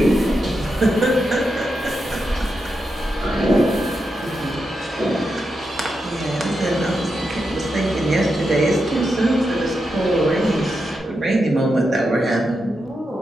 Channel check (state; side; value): normal; both; correlation 0.86